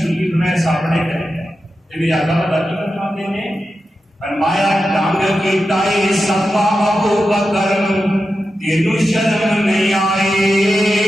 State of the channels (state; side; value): normal; both; correlation 0.91